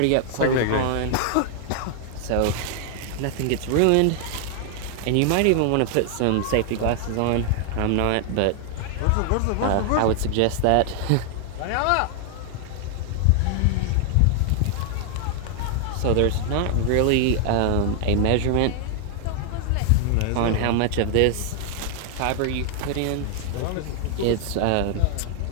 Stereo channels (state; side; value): different; both; correlation 0.00